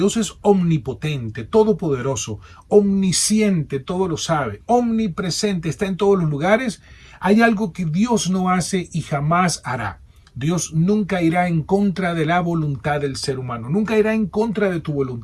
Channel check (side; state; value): both; identical; correlation 1.00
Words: es omnipotente, todopoderoso, omnisciente, todo lo sabe, omnipresente, está en todos los lugares, hay algo que Dios no hace y jamás hará. Dios nunca irá en contra de la voluntad del ser humano, nunca irá en contra de tu